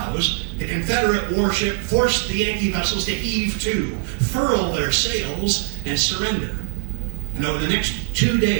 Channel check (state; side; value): silent; left; 56 dB below the other